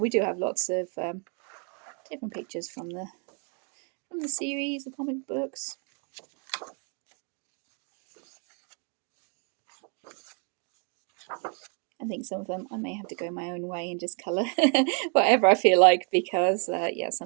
do have lots of different pictures from the series, the comic books. I think some of them I may have to go my own way and just colour whatever I feel like, because yeah,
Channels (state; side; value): quieter; left; 38.0 dB